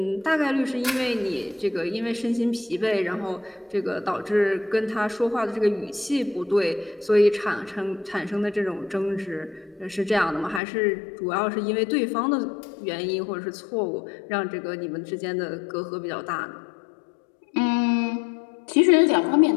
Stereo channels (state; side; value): drops out; right; at 10.6 s